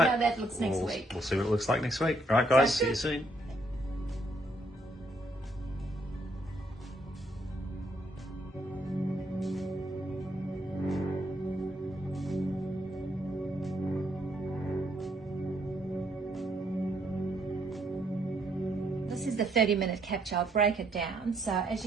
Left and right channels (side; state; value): both; normal; correlation 0.72